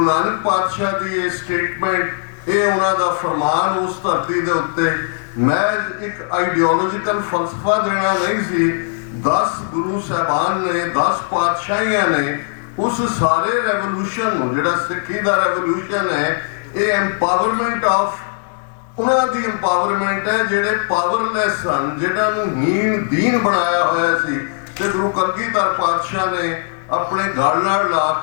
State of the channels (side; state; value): right; silent; digital silence